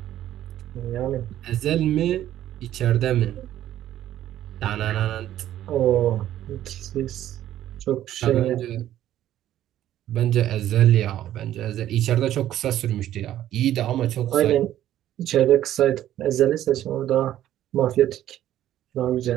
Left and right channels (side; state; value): left; quieter; 12.4 dB